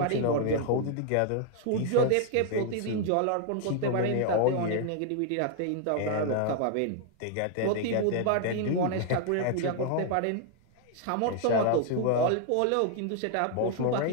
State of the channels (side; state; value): both; different; correlation 0.00